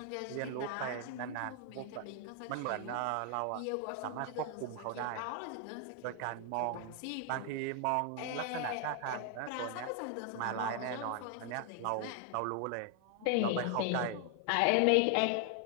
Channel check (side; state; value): both; different; correlation 0.00